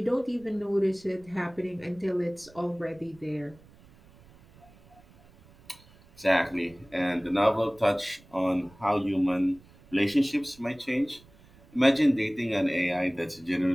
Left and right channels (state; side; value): noise; right; rumble, 26 dB below the sound